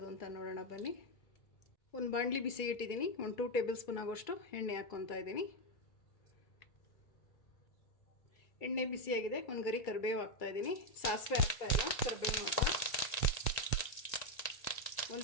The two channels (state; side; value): late; right; 1.9 ms